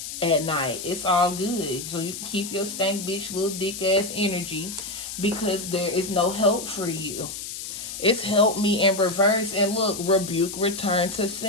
at night. It's all good. So you can keep your stank bitch little dick ass energy because there is no help for you. It's help me in reverse. And look, rebuke, return to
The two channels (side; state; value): left; noise; hiss, 8 dB below the sound